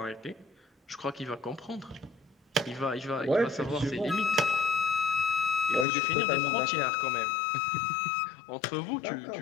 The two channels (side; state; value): right; drops out; at 5.9 s